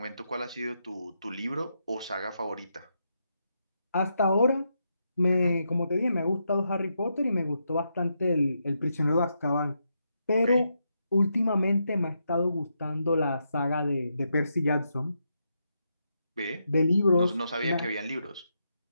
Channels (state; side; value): inverted; both; correlation -0.82